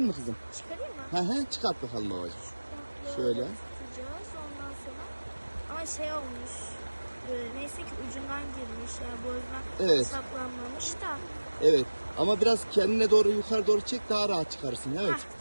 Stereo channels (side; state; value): both; inverted; correlation -1.00